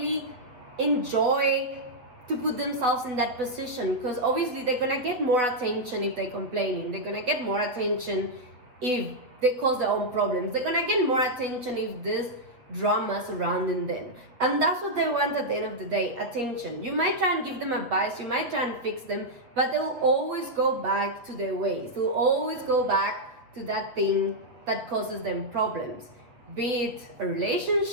enjoy to put themselves in that position, because obviously they're gonna get more attention if they're complaining. They're gonna get more attention if they cause their own problems. They're gonna get more attention if there's drama surrounding them, and that's what they want at the end of the day, attention. You might try and give them advice, you might try and fix them, but they'll always go back to their ways. They'll always go back to that thing that causes them problems, be it a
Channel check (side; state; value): left; late; 8.0 ms